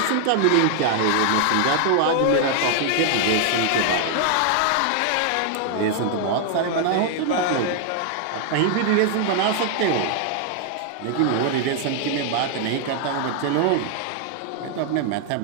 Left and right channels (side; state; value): both; different; correlation 0.00